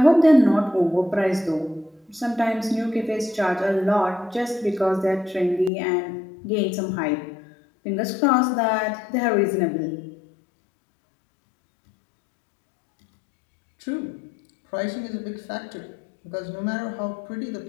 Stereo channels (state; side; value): drops out; right; at 5.7 s